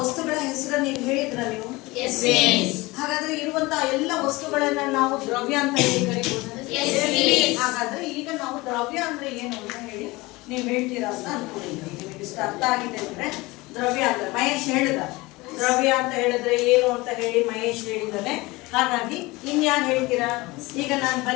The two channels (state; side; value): quieter; right; 22.0 dB